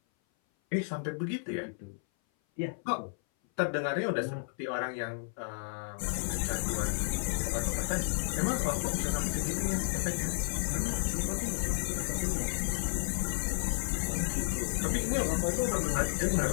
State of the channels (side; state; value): right; silent; 56 dB below the other